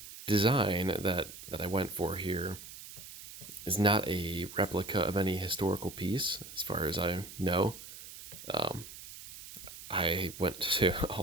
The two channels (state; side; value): noise; right; hiss, 14 dB below the sound